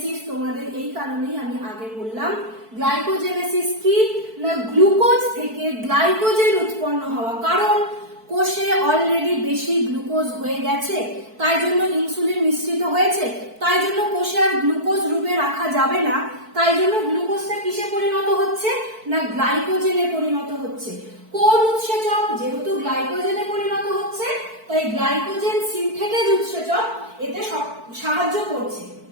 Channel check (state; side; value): late; left; 4.5 ms